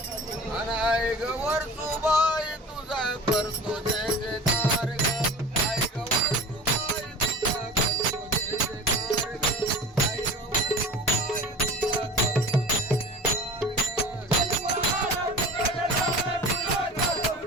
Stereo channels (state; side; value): normal; both; correlation 0.38